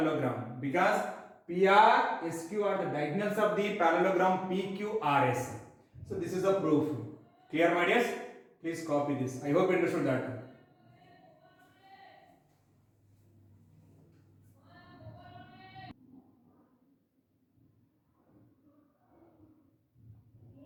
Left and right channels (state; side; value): identical; both; correlation 1.00